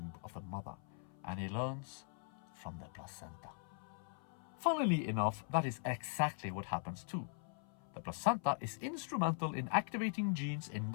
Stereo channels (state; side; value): silent; right; 50 dB below the other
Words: of the mother, and he learns from the placenta. Funnily enough, that is exactly what happens too. The placenta is instrumental in activating genes in